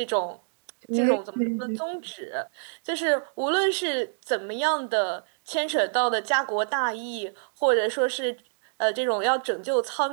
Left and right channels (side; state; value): left; silent; digital silence